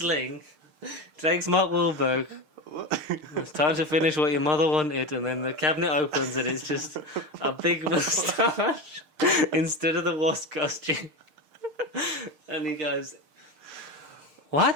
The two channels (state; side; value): late; left; 6.6 ms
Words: Takes Mark Wahlberg. It's time to finish what your mother wanted, and then the cabinet opens and it's just a big moustache instead of the wasp costume. And he goes,